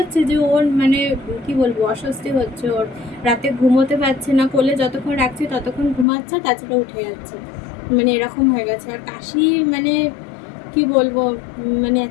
যে ওর মানে কি বলবো অস্বস্তি হচ্ছে ওর। রাতে ঘুমোতে পারছে না, কোলে যতক্ষণ রাখছে ততক্ষণ ঘুমাচ্ছে, তাছাড়া উঠে যাচ্ছে, মানে এরকম হয়ে গেছে। আর কাশি, মানে কি বলবো, মানে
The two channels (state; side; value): drops out; right; at 6.1 s